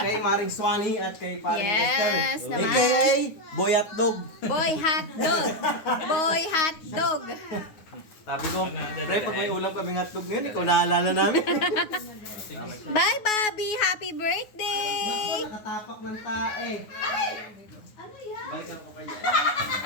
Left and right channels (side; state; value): right; late; 9.5 ms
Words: Maring Swani at kay Paring Yes, Lester. naman. AKA Boy at Dog. Boy hot dog. Boy hot dog. Sabi ko, pre, pag may ulam kaming hotdog ngayon, ikaw naalala namin. Bye, Bobby. Happy birthday. Ako, nakatapak ng tae. Ano yan?